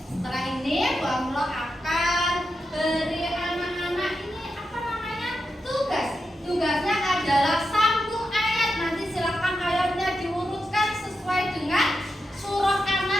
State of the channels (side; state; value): both; normal; correlation 0.88